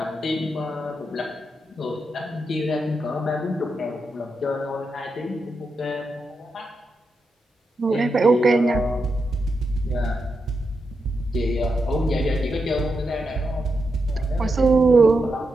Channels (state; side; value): normal; both; correlation 0.86